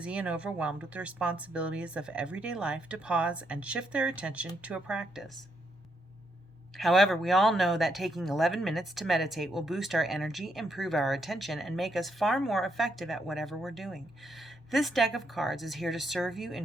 and overwhelmed with the responsibilities of everyday life to pause and shift their attention to a practice. However, we all know that taking 11 minutes to meditate will boost our energy, improve our attention, and make us far more effective at whatever we're doing. This deck of cards is here to serve you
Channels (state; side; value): normal; both; correlation 0.77